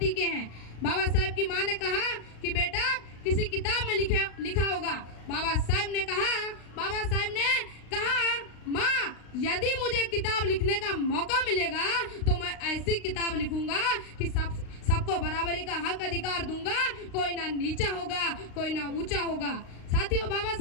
के हैं। बाबा साहेब की माँ ने कहा कि बेटा, किसी किताब में लिखा होगा। बाबा साहेब ने कहा, माँ, यदि मुझे किताब लिखने का मौका मिलेगा तो मैं ऐसी किताब लिखूंगा कि सबको बराबरी का हक अधिकार दूंगा, कोई ना नीचा होगा, कोई ना ऊंचा होगा। साथियों, बाबा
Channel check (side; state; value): right; late; 35 ms